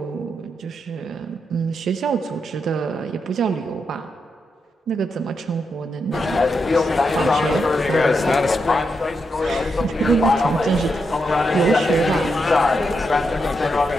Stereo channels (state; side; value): normal; both; correlation 0.84